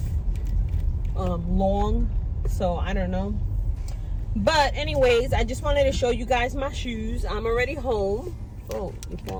long. So I don't know, but anyways, I just wanted to show you guys my shoes. I'm already home. Oh, you're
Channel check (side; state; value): both; identical; correlation 1.00